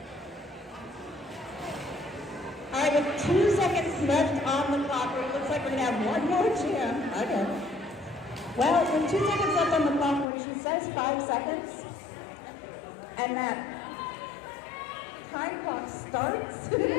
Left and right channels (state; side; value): drops out; right; at 10.2 s